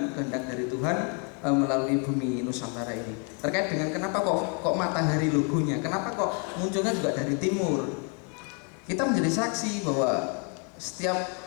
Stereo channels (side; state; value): right; quieter; 38.4 dB